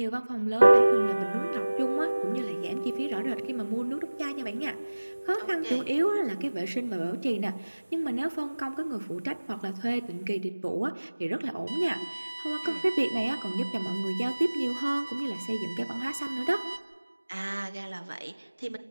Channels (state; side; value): inverted; both; correlation -1.00